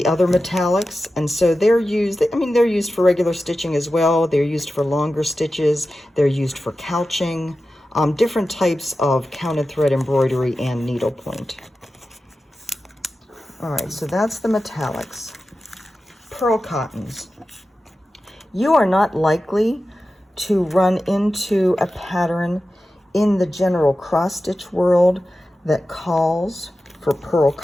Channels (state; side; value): normal; both; correlation 0.93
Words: other metallics, and so they're used, I mean, they're used for regular stitching as well. They're used for longer stitches. They're used for couching. Different types of counted thread embroidery and needlepoint. All right, so that's the metallics. Pearl cottons. You are not likely to run into a pattern in the general cross-stitch world that calls for pearl